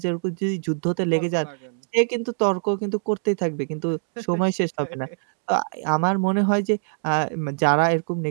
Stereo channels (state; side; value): silent; left; 63 dB below the other